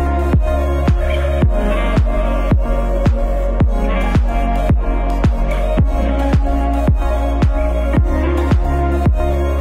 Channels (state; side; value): identical; both; correlation 1.00